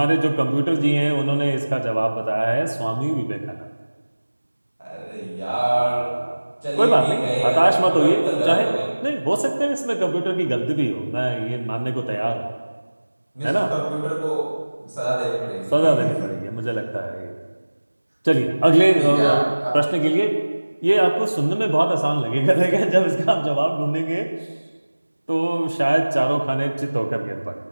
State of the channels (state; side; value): inverted; both; correlation -1.00